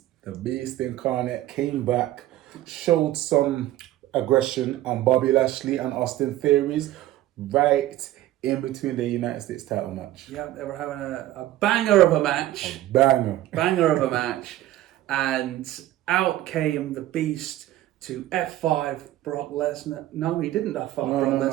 The Beast Incarnate came back, showed some aggression on Bobby Lashley and Austin Theories right in between the United States title match. Yeah, they were having a banger of a match. Banger. Banger of a match. And out came the Beast to F5 Brock Lesnar. No, he didn't F5 Brock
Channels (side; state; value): left; quieter; 14.7 dB